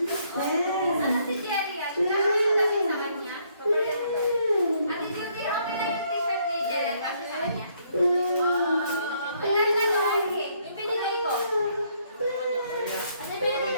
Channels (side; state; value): both; inverted; correlation -0.69